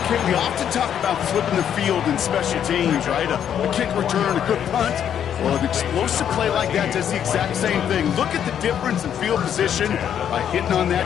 Kate, we often talk about flipping the field in special teams, right? A kick return, a good punt. Well, an explosive play like that does the exact same thing. Look at the difference in field position. By hitting on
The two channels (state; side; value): quieter; right; 9.2 dB